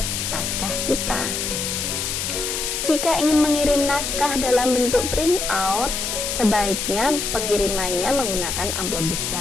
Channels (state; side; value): noise; left; hiss, 2 dB below the sound